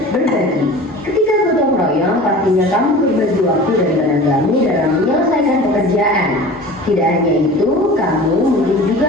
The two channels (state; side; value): normal; both; correlation 0.39